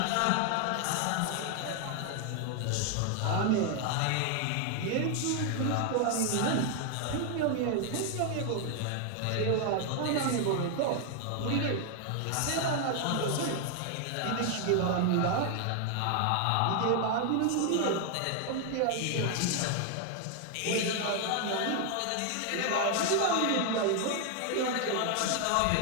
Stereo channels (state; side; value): different; both; correlation 0.00